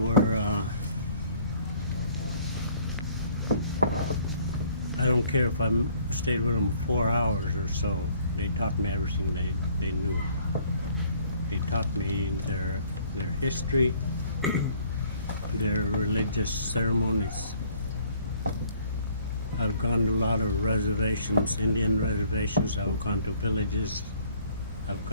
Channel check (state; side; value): inverted; both; correlation -0.59